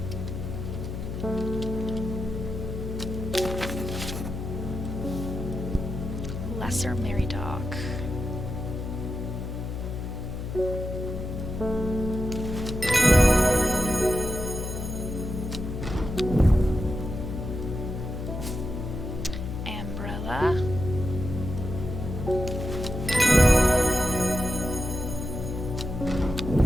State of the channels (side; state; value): left; noise; hum, 5 dB below the sound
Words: Lesser Mary Dog. Umbrella.